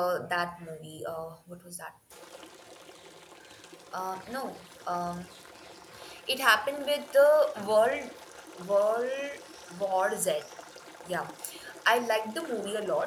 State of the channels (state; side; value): identical; both; correlation 1.00